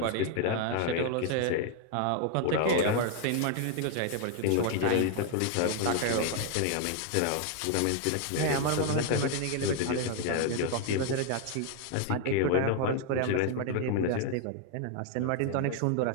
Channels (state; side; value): different; both; correlation 0.00